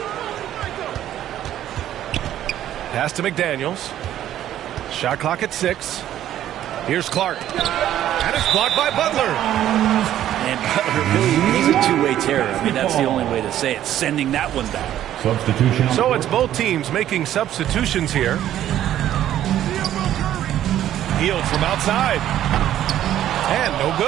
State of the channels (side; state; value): left; quieter; 11.9 dB